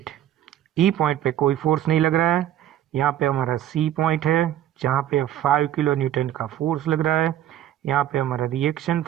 ई पॉइंट पे कोई फोर्स नहीं लग रहा है. यहाँ पे हमारा सी पॉइंट है जहाँ पे 5 किलो न्यूटन का फोर्स लग रहा है. यहाँ पे हमारा रिएक्शन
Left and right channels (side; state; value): left; quieter; 12.0 dB